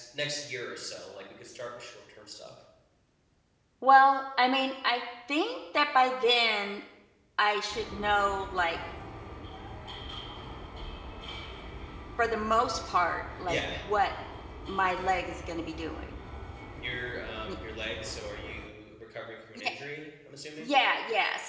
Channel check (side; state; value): both; identical; correlation 1.00